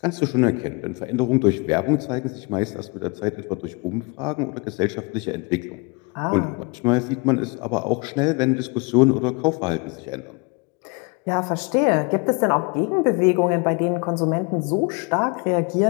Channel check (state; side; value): quieter; right; 29.6 dB